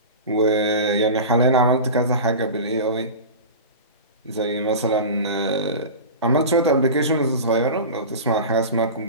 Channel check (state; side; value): inverted; both; correlation -0.30